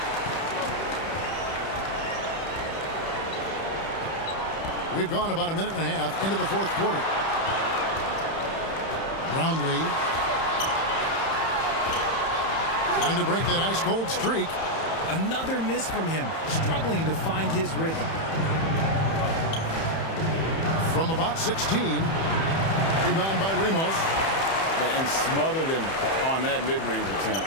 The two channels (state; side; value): late; right; 31 ms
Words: We've gone about a minute and a half into the fourth quarter. Brownlee trying to break that ice-cold streak. Another miss from him, struggling to find his rhythm. From about 16, rebound by Ramos. And smothered him on that mid-range attempt.